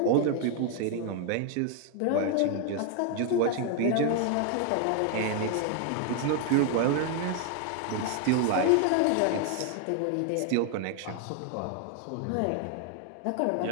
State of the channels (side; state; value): both; different; correlation 0.00